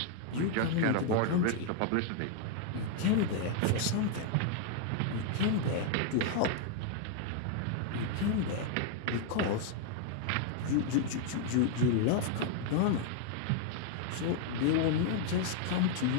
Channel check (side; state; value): both; different; correlation 0.00